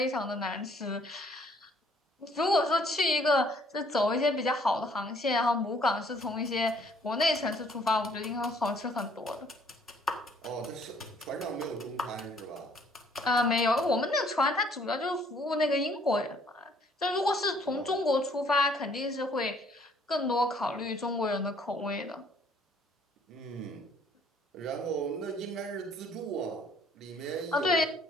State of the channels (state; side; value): normal; both; correlation 0.62